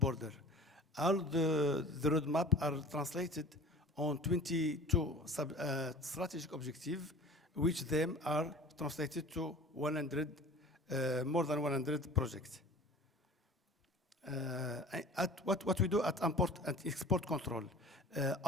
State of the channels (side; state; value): both; normal; correlation 0.41